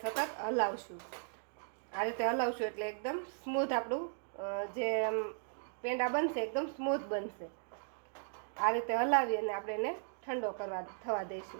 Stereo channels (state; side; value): silent; left; digital silence